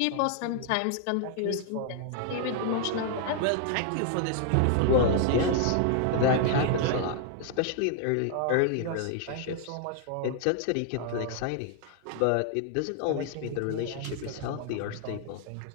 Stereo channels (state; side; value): different; both; correlation 0.00